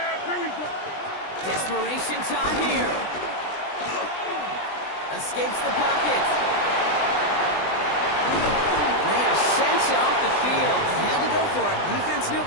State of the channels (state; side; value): late; right; 20 ms